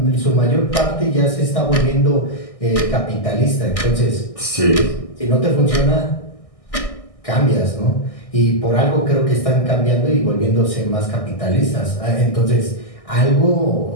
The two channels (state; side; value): late; right; 1.6 ms